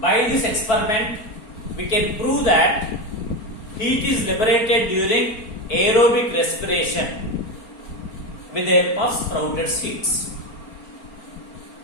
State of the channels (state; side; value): late; right; 4.4 ms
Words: By this experiment, we can prove that heat is liberated during aerobic respiration with the help of sprouted seeds.